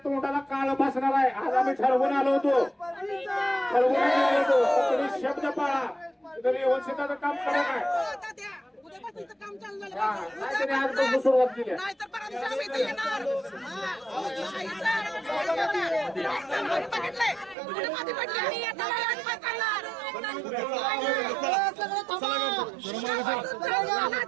तोंडाला काळ बसणार आहे. आज आम्ही ठरवून आलो होतो, तुम्ही शब्द पाळा. तरी व्यवस्थिताचं काम करा काय उद्यापासून इथं काम चालू झालं नाहीतरी आजपासून सुरुवात केली. नाही तर परत दिवशी आम्ही इथे येणार. नाही सर, बघितलंय पुढे मध्ये पडली आणि आता आम्ही काय करणार?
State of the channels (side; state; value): left; drops out; at 17.6 s